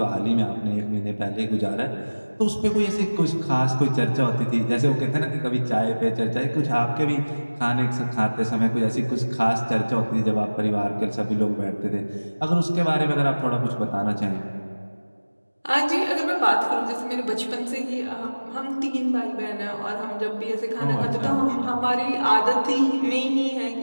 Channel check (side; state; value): both; inverted; correlation -1.00